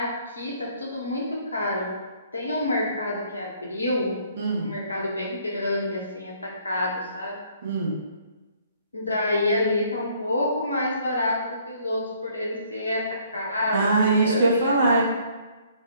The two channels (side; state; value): both; inverted; correlation -0.62